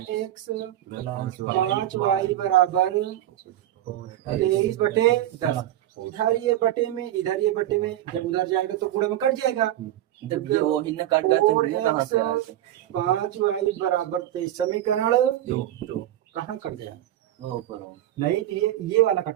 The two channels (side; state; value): left; quieter; 13.0 dB